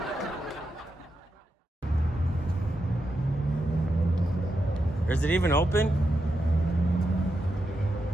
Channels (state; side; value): normal; both; correlation 0.86